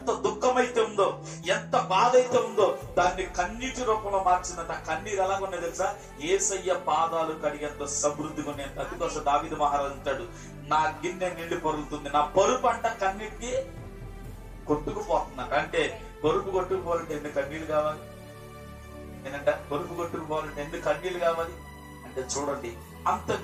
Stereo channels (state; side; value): identical; both; correlation 1.00